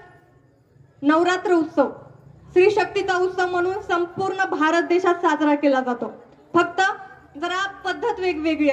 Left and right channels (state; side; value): identical; both; correlation 1.00